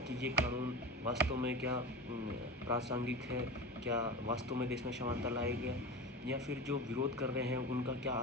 कि ये कानून वास्तव में क्या प्रासंगिक है, क्या वास्तव में देश में समानता लाएगा या फिर जो विरोध कर रहे हैं उनका क्या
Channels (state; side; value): normal; both; correlation 0.28